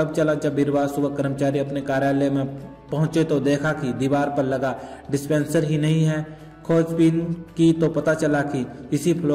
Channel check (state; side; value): identical; both; correlation 1.00